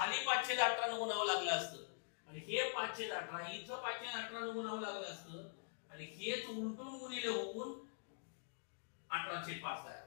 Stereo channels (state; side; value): silent; right; digital silence